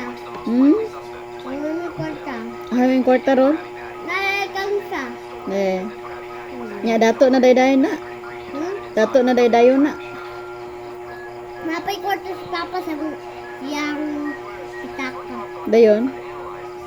Hmm? Naman ng kwarta. Hawing kwarta ron? Nalalakang sa. Eh. Nya dato na daydayon na. Dato na daydayon na. Napay kwarta si Papa sa siyang itaka. Dayon.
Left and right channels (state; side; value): identical; both; correlation 1.00